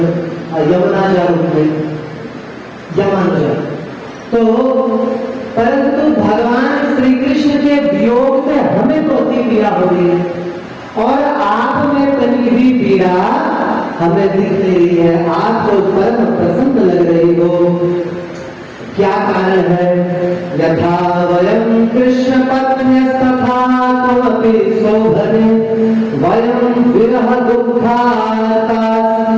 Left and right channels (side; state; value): both; identical; correlation 1.00